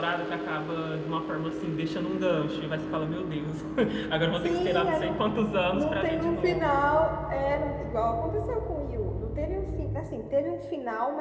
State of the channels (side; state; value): both; identical; correlation 1.00